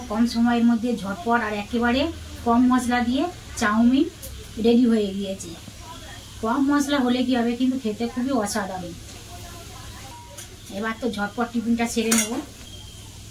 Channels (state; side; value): identical; both; correlation 1.00